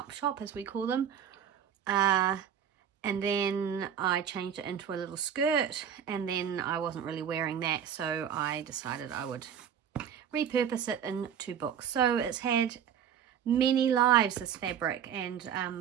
shop, as we call them. And then I changed it into a little skirt, and then I wasn't really wearing that, so I decided I would repurpose it into books. So it's had many lives, this fabric,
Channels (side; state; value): left; quieter; 8.6 dB